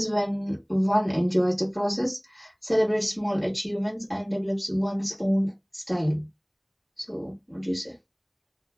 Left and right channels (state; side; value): identical; both; correlation 1.00